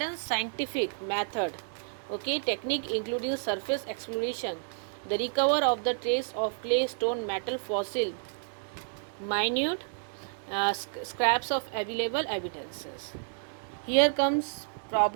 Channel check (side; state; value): left; silent; digital silence